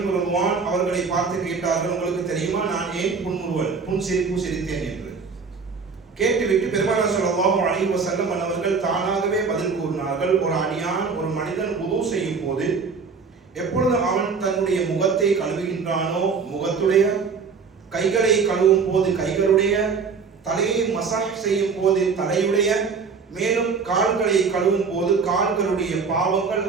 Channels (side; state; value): left; quieter; 5.2 dB